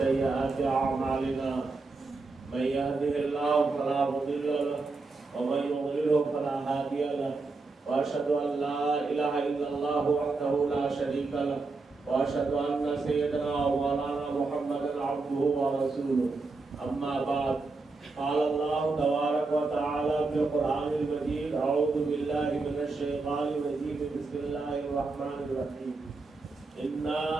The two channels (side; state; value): left; quieter; 3.8 dB